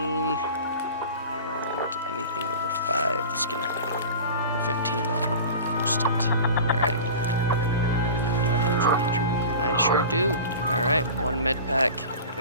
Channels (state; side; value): inverted; both; correlation -0.36